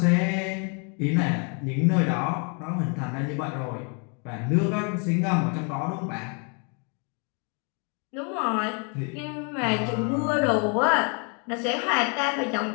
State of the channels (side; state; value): right; quieter; 36.9 dB